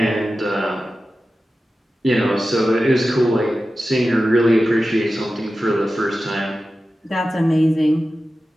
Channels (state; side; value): normal; both; correlation 0.94